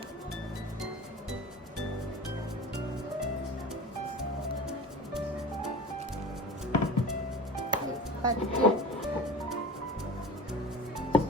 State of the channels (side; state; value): both; normal; correlation 0.35